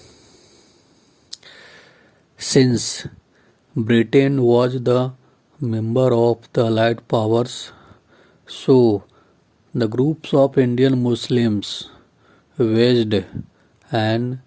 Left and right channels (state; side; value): identical; both; correlation 1.00